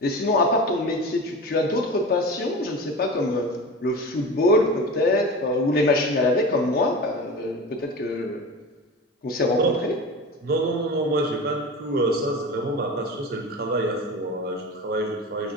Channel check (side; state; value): both; normal; correlation 0.31